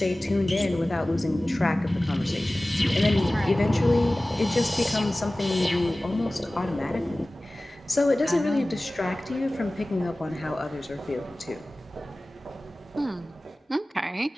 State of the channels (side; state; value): both; normal; correlation 0.98